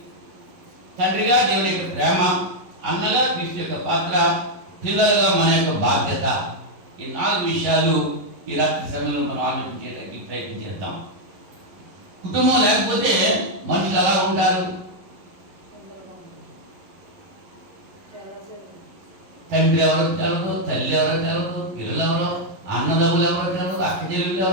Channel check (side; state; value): left; late; 11 ms